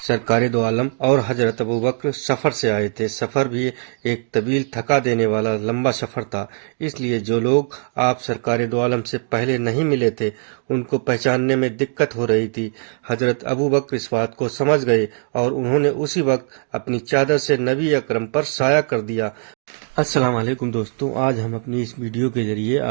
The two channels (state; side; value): silent; left; 55 dB below the other